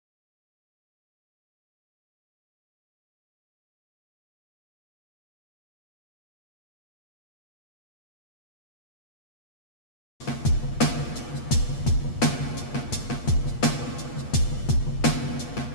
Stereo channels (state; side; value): late; right; 8.4 ms